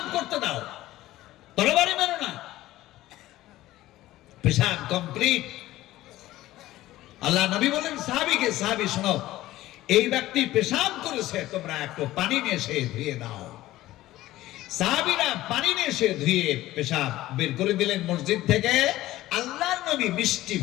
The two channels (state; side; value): quieter; right; 15.9 dB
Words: করতে দাও, তরবারি মেরো না। পেশাব কমপ্লিট। আল্লাহ নবী বলেন সাহাবীকে, সাহাবী শোনো, এই ব্যক্তি পেশাব করেছে, তোমরা একটু পানি নিয়ে এসে ধুয়ে দাও। সাহাবীরা পানি নিয়ে এসে ধুয়ে পেশাব বের করে দিলেন মসজিদ থেকে। আল্লাহর নবী মিষ্টি